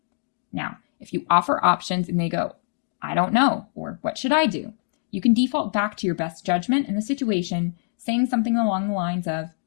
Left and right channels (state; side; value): silent; right; digital silence